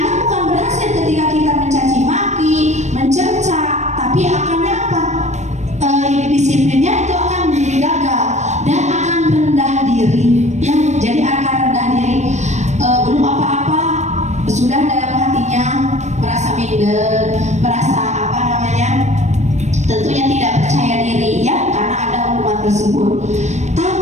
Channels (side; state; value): left; late; 0.34 ms